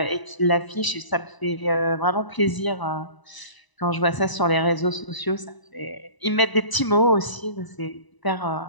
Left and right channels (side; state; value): right; late; 1.0 ms